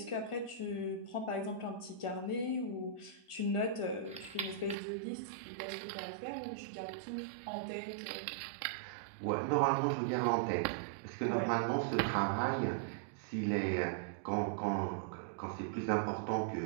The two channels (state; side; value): drops out; left; at 4.8 s